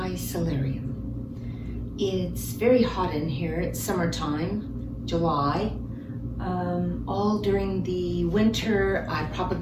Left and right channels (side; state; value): both; identical; correlation 1.00